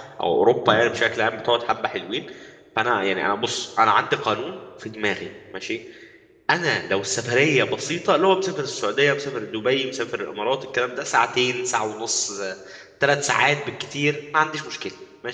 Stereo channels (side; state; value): both; identical; correlation 1.00